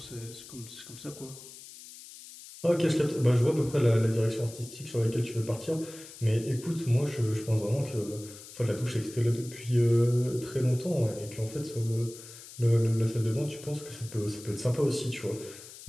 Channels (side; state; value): left; noise; hiss, 16 dB below the sound